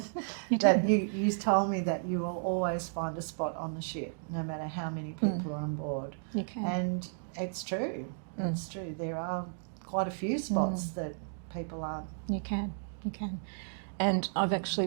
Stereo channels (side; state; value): left; silent; digital silence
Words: You That did. you told me that you will always find a spot on the ship, no matter how many people are on board. You can. And it's true. It's true. There are quite a few spots that people aren't. You can. And I've actually